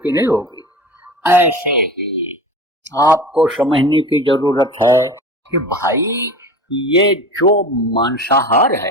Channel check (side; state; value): both; normal; correlation 0.35